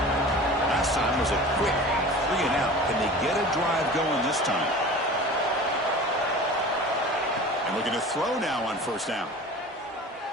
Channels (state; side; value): normal; both; correlation 0.38